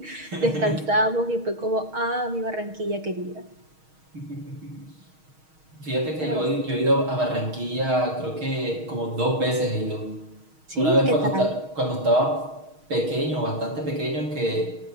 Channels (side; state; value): left; late; 6.4 ms